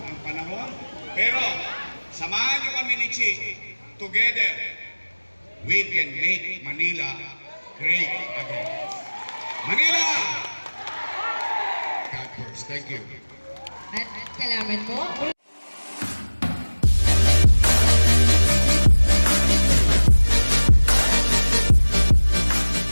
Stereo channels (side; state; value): both; inverted; correlation -1.00